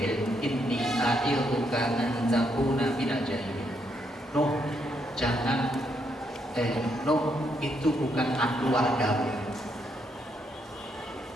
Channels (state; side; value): normal; both; correlation 0.76